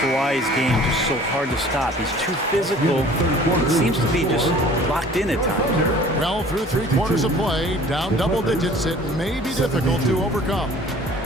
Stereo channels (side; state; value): both; normal; correlation 0.49